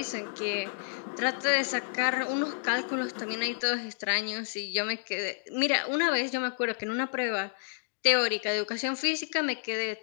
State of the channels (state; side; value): silent; right; digital silence